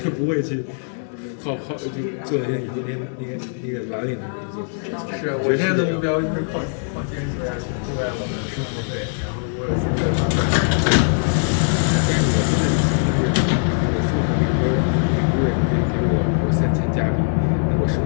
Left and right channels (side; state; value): right; silent; digital silence